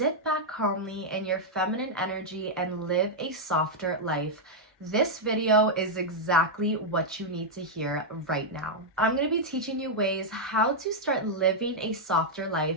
back calmly in your feminine energy and live a softer life, this video is exactly what you need to hear right now. I'm going to be teaching you ways how to start living a softer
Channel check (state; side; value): normal; both; correlation -0.03